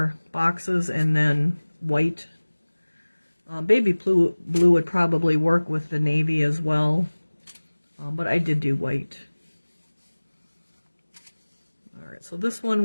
boxes, and then white. Baby blue would probably work with the navy as well, but I did do white. Alright, so this one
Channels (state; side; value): inverted; both; correlation -1.00